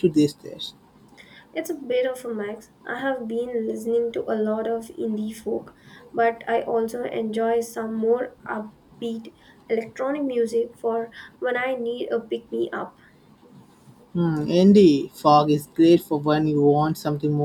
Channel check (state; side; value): identical; both; correlation 1.00